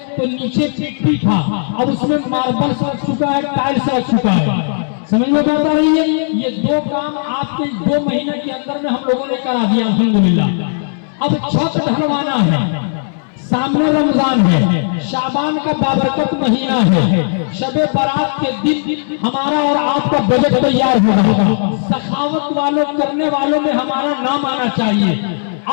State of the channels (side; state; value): right; silent; digital silence